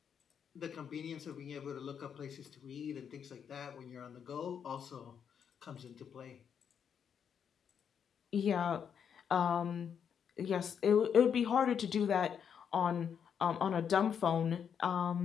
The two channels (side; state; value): right; quieter; 7.7 dB